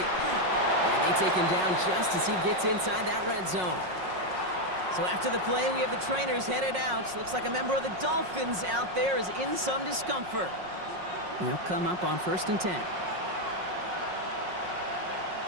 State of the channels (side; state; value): left; late; 5.5 ms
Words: And they take him down just as he gets inside that red zone. So after the play, we have the trainers headed out. Looks like a member of the Dolphins out there is in some discomfort. They'll come up on 1st and 10.